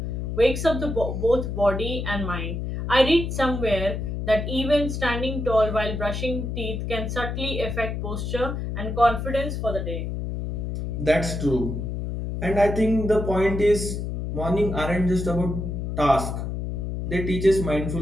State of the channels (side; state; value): left; noise; hum, 4 dB below the sound